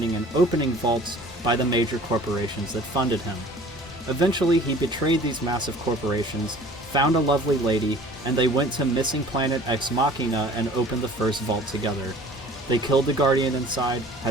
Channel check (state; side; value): normal; both; correlation 0.48